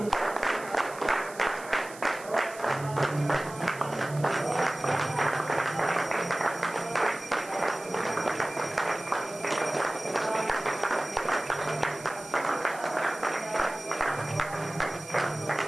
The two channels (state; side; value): noise; right; hiss, 17 dB below the sound